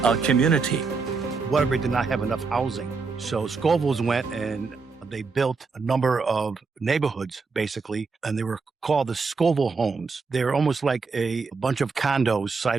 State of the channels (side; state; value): left; quieter; 4.6 dB